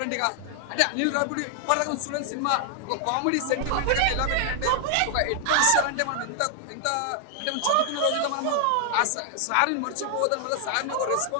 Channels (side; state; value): both; different; correlation 0.00